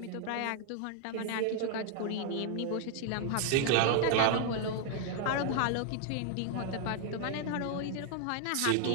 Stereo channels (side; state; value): both; different; correlation 0.00